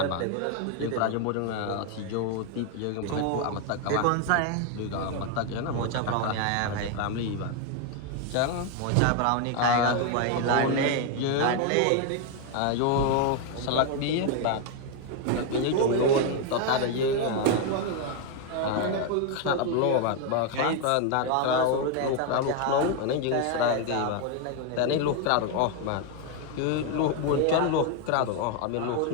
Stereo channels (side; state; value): both; different; correlation 0.01